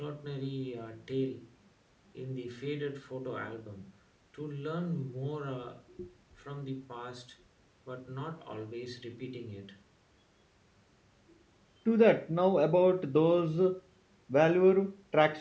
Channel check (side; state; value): both; identical; correlation 1.00